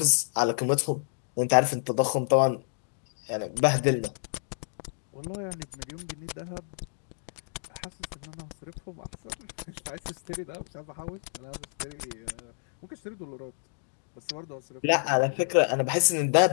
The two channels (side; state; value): right; silent; digital silence